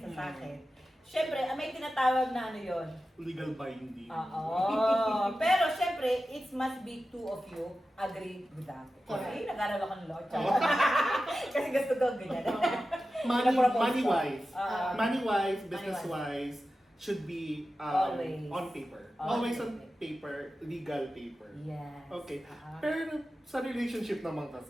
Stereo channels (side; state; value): both; normal; correlation 0.93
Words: sa akin. Siyempre, may tinatawag na ano yon. Legal binding. Oo. Pero siyempre, it must be two of you agree with that. Kasi nag-aral ako ng law. Kasi gusto ko ganyan. Money-wise. Ah. Money-wise, business-wise, should be Always. on paper. Always. Always on paper, legal paper. Yes. Okay. Ah. Pero sa relationship naman